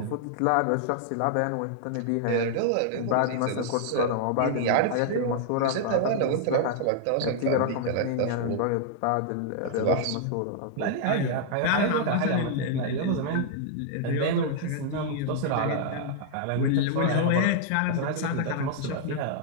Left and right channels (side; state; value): both; different; correlation -0.01